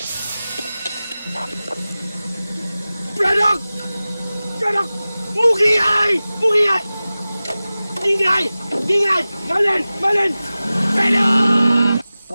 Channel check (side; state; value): both; inverted; correlation -0.97